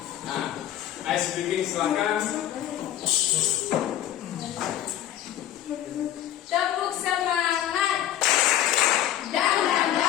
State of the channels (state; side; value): quieter; right; 12.1 dB